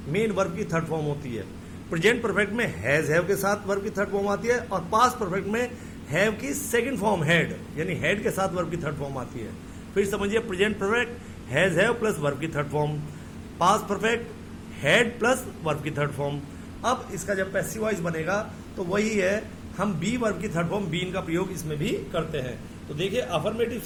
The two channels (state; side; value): identical; both; correlation 1.00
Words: मेन वर्ब की थर्ड फॉर्म होती है। प्रेजेंट परफेक्ट में हैज हैव के साथ वर्ब की थर्ड फॉर्म आती है और पास्ट परफेक्ट में हैव की सेकंड फॉर्म हैड, यानी हैड के साथ वर्ब की थर्ड फॉर्म आती है। फिर समझिए, present perfect has have plus verb की third form, past perfect had plus verb की थर्ड फॉर्म। अब इसका जब पैसिव वॉइस बनेगा तो वही है, हम बी वर्ब की थर्ड फॉर्म बीन का प्रयोग इसमें भी करते हैं। तो देखिए, अफर्मेटिव